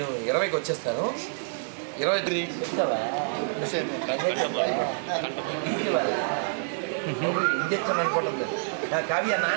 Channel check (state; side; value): silent; left; digital silence